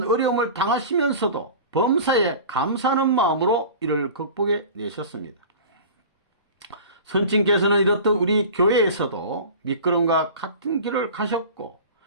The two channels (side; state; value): both; inverted; correlation -0.37